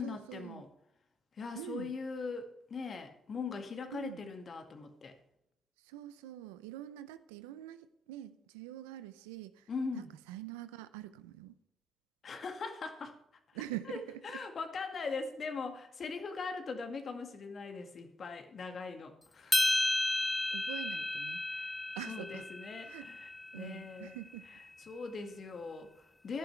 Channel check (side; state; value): both; normal; correlation 0.84